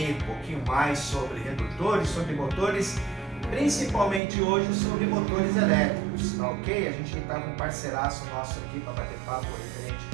um pouquinho mais sobre redutores, sobre motores, principalmente hoje sobre motores elétricos, tá ok? A gente está com um parceiraço nosso aqui para bater papo referente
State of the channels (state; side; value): drops out; left; at 4.2 s